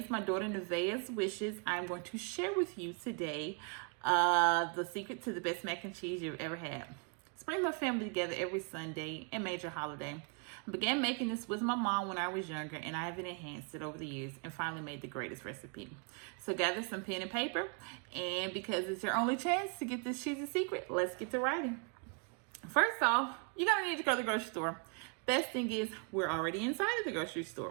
my daughter Nevaeh's wishes, I'm going to share with you today the secret to the best mac and cheese you've ever had. Bring my family together every Sunday and major holiday. I began making this with my mom when I was younger, and I have enhanced it over the years and finally made the greatest recipe. So gather some pen and paper, and because it's your only chance to get this cheesy secret, let's get to writing. First off, you're gonna need to go to the grocery store. Best thing is we're already inside of the grocery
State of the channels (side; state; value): left; quieter; 38.0 dB